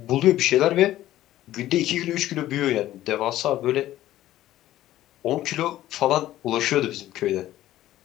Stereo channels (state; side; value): quieter; right; 14.1 dB